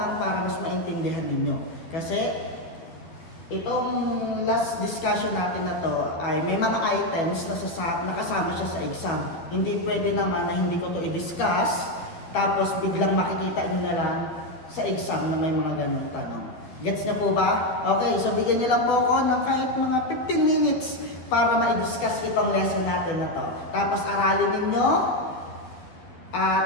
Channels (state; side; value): late; right; 12 ms